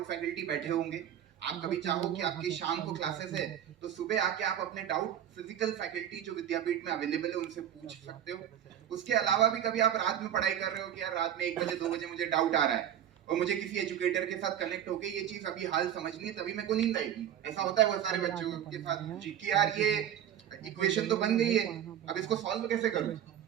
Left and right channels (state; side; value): quieter; left; 10.1 dB